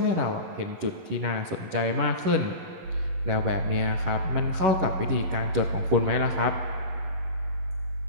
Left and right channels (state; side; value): late; left; 11 ms